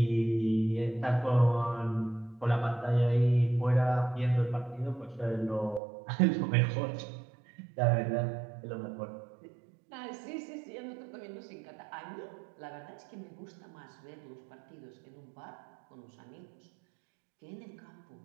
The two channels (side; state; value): left; drops out; at 5.8 s